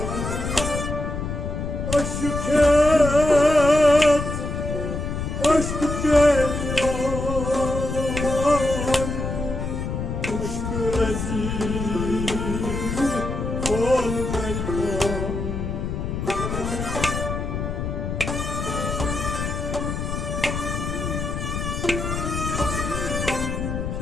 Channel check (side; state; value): left; noise; rumble, 3 dB below the sound